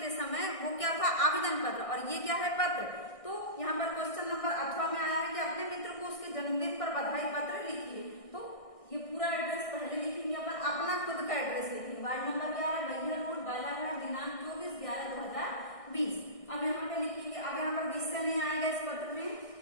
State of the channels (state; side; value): late; right; 1.6 ms